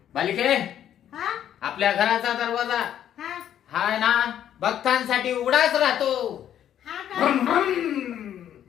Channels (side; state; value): right; quieter; 10.4 dB